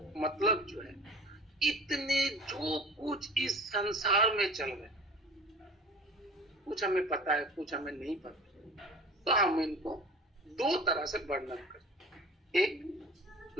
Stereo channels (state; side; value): normal; both; correlation 0.41